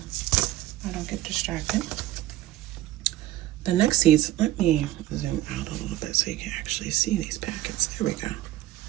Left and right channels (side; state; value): left; quieter; 14.9 dB